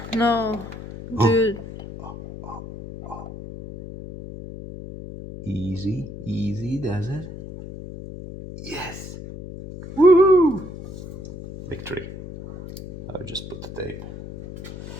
No, dude. Easy, easy does it. Yes. Woohoo! Victory. I'll just put the tape.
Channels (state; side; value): noise; left; hum, 12 dB below the sound